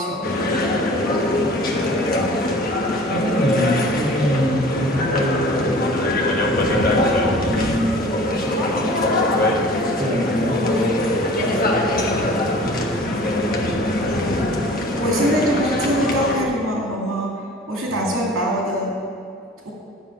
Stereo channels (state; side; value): normal; both; correlation 0.45